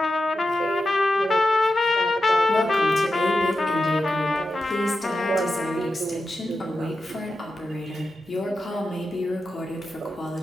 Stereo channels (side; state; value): both; normal; correlation 0.90